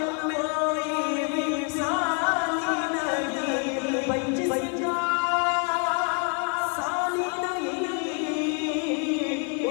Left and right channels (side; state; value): right; quieter; 37.6 dB